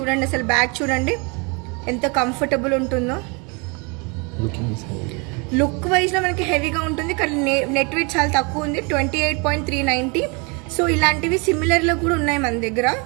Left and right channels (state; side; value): quieter; left; 31.5 dB